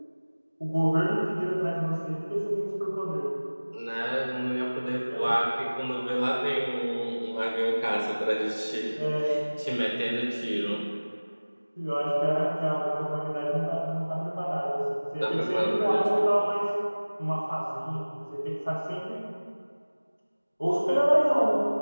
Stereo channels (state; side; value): inverted; both; correlation -1.00